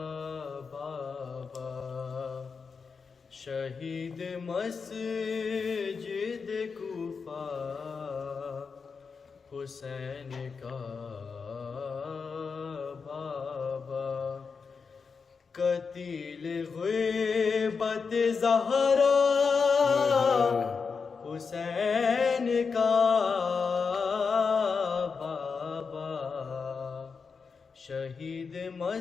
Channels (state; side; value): quieter; right; 5.3 dB